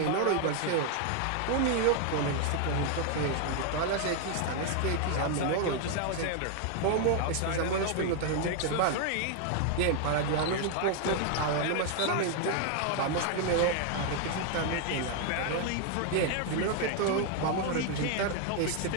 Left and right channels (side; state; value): both; different; correlation 0.00